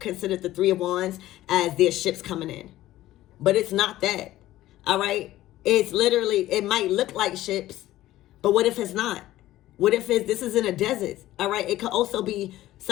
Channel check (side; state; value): right; quieter; 15.2 dB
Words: the 3 of Wands as their ships coming in, but it's not that. All right, it's literally, it might look like ships, but what if it's not? What if this is in a desert? All right, it could also be